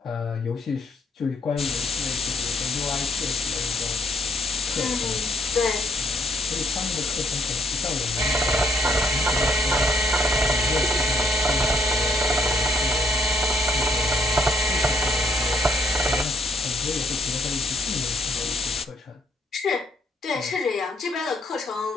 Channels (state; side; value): normal; both; correlation 0.71